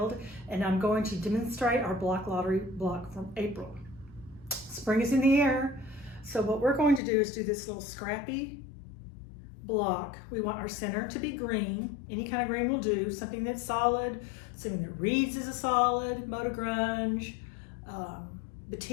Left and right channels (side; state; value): right; drops out; at 7.0 s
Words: and I'm going to demonstrate our block lottery block from April. Spring is in the air, so what we're going to do is do this little Scrappy block. We want our center to be green. Any kind of green will do, something that's solid, something that reads as a solid, Moto Grunge,